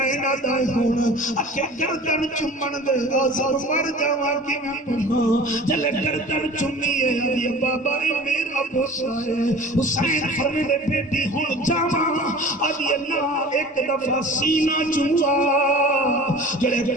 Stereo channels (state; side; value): normal; both; correlation 0.41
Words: دا ہونا اکھے گردن چمن دے آزر مر جاواں کی میں پڑھا جلے گردن چمی ہے ادھے بابا میرا بوسا ہے حسین فرمے دے بیٹی ہون جاواں ادھے اللہ ایک دفعہ سینہ چموا جلے